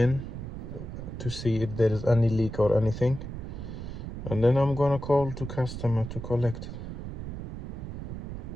to see if there is any leak or anything, and then I'm gonna call to customer to collect it.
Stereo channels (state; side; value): noise; right; rumble, 8 dB below the sound